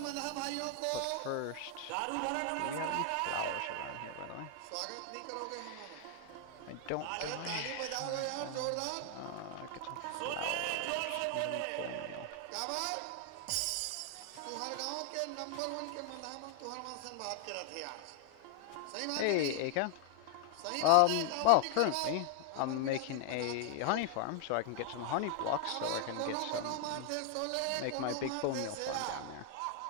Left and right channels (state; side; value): different; both; correlation 0.00